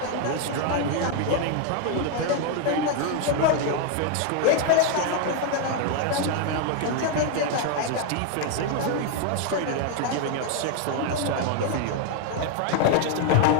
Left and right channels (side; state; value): both; different; correlation 0.01